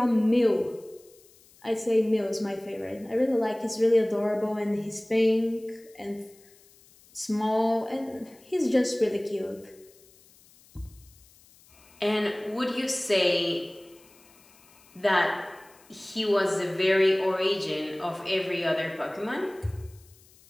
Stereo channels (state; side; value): noise; left; hiss, 27 dB below the sound